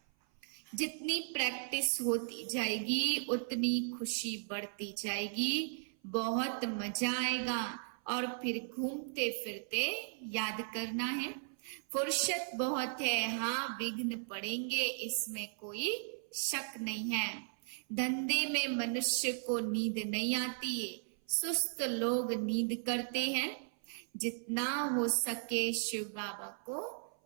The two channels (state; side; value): silent; left; 53 dB below the other